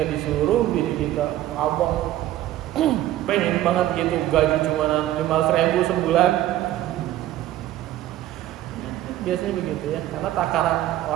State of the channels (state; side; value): quieter; left; 13.8 dB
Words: disuruh bini kita, abang pengen banget gitu, gaji cuma 500.000 sebulan. Biasanya begitu ya, karena takaran